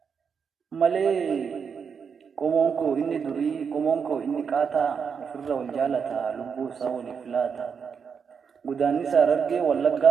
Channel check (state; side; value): quieter; left; 6.4 dB